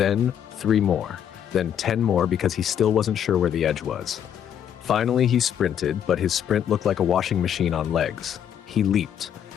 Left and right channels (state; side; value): quieter; right; 9.3 dB